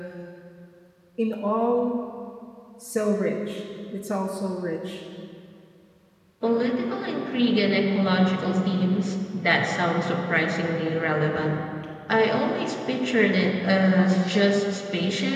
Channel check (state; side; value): identical; both; correlation 1.00